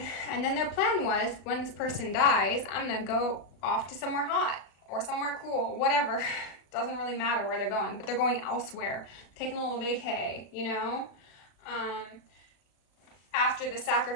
And then their plan was, when this person dies, I'm gonna go off to somewhere hot or somewhere cool, whatever. Doesn't really matter where they're going, but they're going elsewhere, taking a little vacay, you know? after the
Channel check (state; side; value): late; right; 37 ms